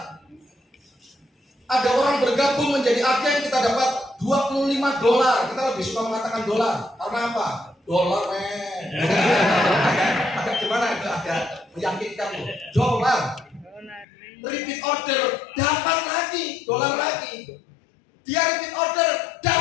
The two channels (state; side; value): drops out; right; at 14.1 s